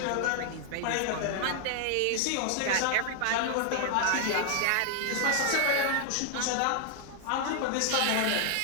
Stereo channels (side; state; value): both; different; correlation 0.00